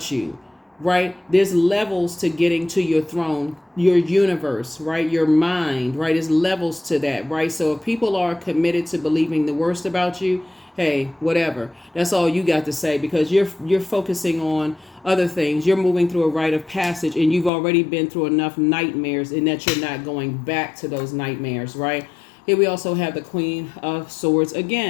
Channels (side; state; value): right; drops out; at 17.5 s